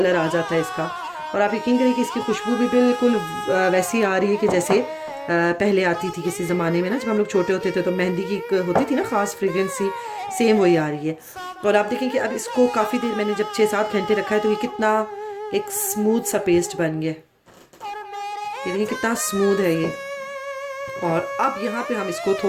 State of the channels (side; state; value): both; identical; correlation 1.00